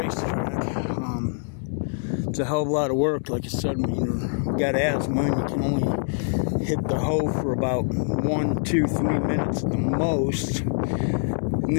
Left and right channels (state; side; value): silent; right; 62 dB below the other